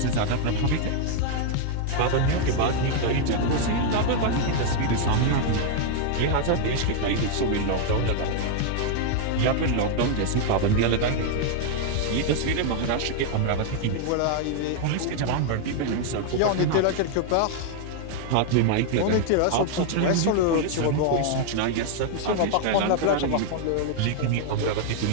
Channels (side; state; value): both; different; correlation 0.00